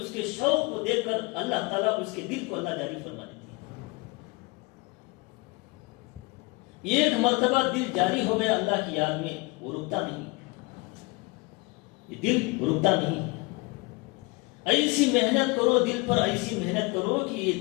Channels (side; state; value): right; quieter; 26.0 dB